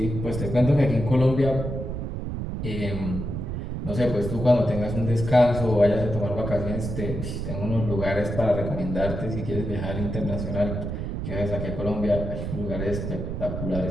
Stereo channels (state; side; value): noise; right; rumble, 4 dB below the sound